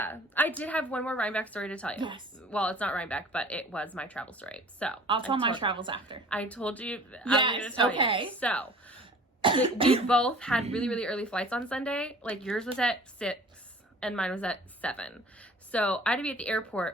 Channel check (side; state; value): both; normal; correlation 0.47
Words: I did have one more Rhinebeck story to tell you. Yes. Well, it's not Rhinebeck, but it was my travel story. So I'll tell my travels after. I told you. Yes. I'm going to tell you. So we both had really, really early flights on Sunday. Like yours was at 6 and mine was at 7. So I had to be at the